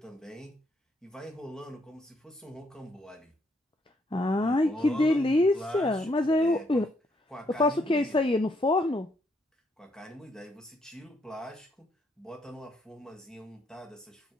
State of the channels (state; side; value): normal; both; correlation 0.72